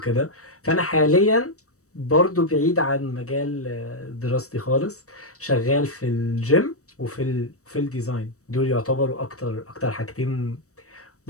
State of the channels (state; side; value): late; right; 0.65 ms